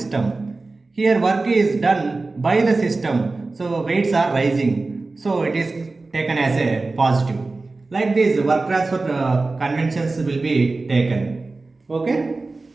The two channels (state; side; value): quieter; left; 3.5 dB